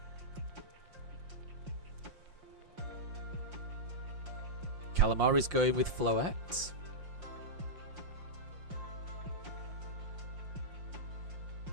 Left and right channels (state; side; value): late; left; 5.7 ms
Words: Calamari's going with Floette.